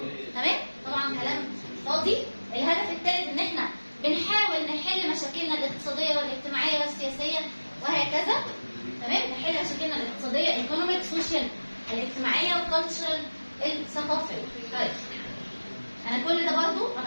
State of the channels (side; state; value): both; inverted; correlation -1.00